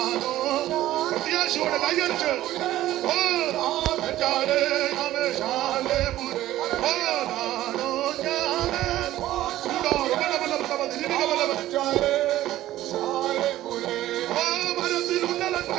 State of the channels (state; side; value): quieter; left; 14.5 dB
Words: പ്രത്യാശയോടെ കൈയടിച്ച് ഓ ശാലേപുരേ, ഓ കാണൂ ഞാൻ.